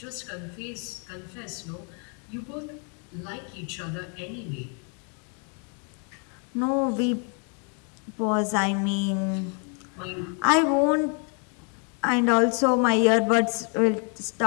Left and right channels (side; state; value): right; quieter; 38.9 dB